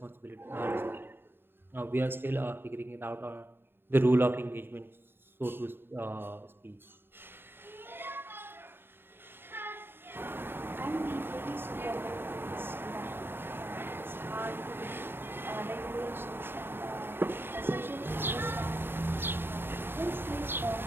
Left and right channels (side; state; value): left; late; 0.10 ms